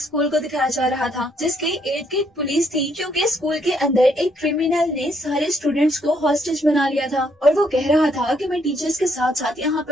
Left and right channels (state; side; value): normal; both; correlation 0.70